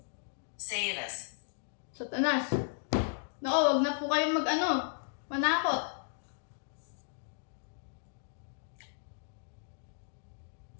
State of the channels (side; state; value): right; silent; digital silence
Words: Sailors. Satanas. Nako, wag na po kayong manakot.